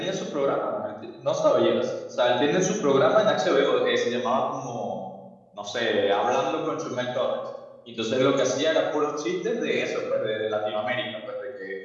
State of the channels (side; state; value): both; identical; correlation 1.00